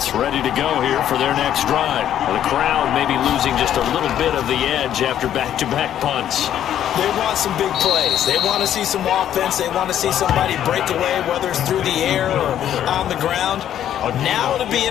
ready to go here for their next drive. The crowd may be losing just a little bit of the edge after back-to-back punts. They want some big plays. They want to see some offense. They want to see somebody break away, whether it's through the air or on the ground. Now it'll be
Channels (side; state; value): right; quieter; 10.7 dB